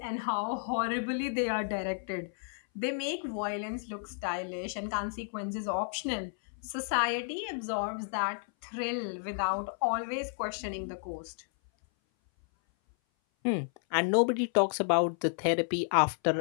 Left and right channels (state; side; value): silent; right; 56 dB below the other